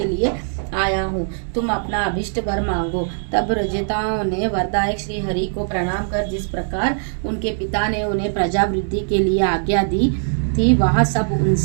लिए आया हूँ, तुम अपना अभिष्ट वर मांगो। तब प्रचेताओं ने वरदायक श्री हरि को प्रणाम कर जिस प्रकार उनके पिता ने उन्हें प्रजा वृद्धि के लिए आज्ञा दी थी, वह सब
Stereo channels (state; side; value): silent; left; 65 dB below the other